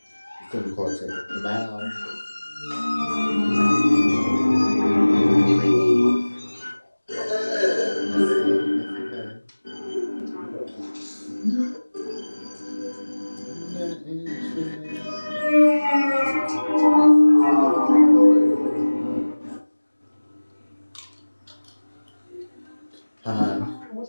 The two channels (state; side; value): inverted; both; correlation -1.00